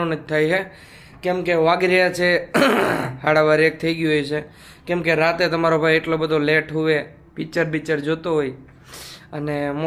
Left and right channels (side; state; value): both; identical; correlation 1.00